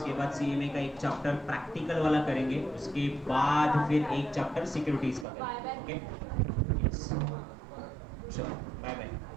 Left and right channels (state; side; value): drops out; left; at 5.2 s